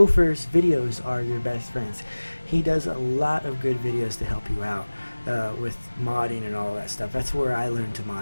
videos are your best friends. He does a lot of good videos to help you out. With modding and all that stuff. That's where I learned to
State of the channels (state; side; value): inverted; both; correlation -1.00